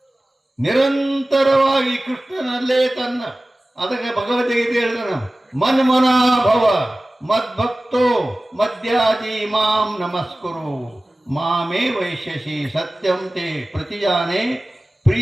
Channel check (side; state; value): both; normal; correlation 0.97